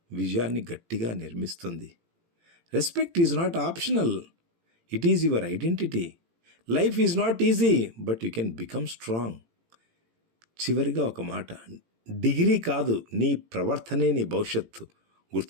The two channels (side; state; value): left; late; 18 ms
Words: విజయాన్ని గట్టిగా నిర్మిస్తుంది. Respect is not optional, it is your identity. Life is not easy, but you can become strong. చివరిగా ఒక మాట, డిగ్రీ కాదు, నీ ప్రవర్తనే నీ భవిష్యత్తు.